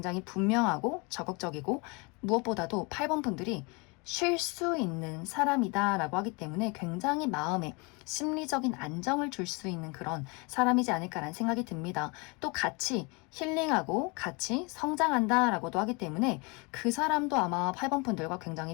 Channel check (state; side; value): quieter; right; 29.3 dB